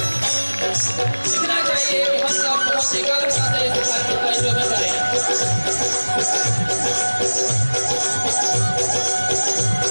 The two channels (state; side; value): inverted; both; correlation -1.00